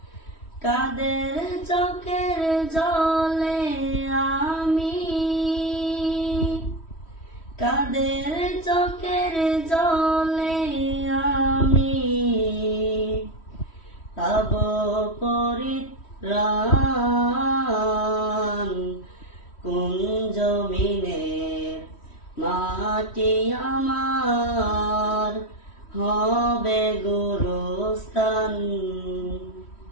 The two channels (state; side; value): late; right; 3.1 ms